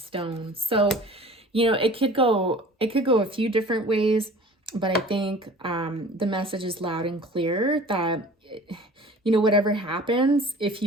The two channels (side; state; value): both; normal; correlation 0.44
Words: So, you know, it could go a few different ways, but I think the message is loud and clear that, you know, whatever happens, if